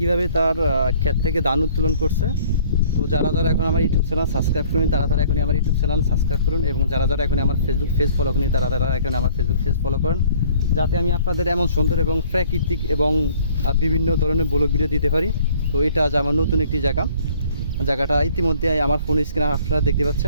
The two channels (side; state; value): both; inverted; correlation -0.55